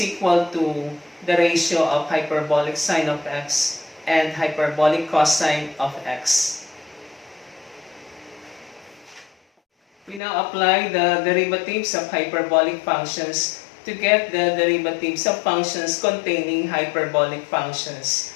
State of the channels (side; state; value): right; drops out; at 10.2 s